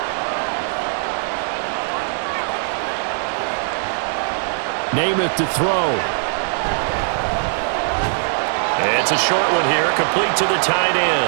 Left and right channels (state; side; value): silent; left; 66 dB below the other